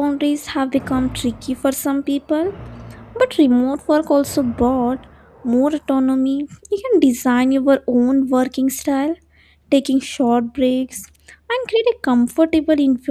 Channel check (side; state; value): both; identical; correlation 1.00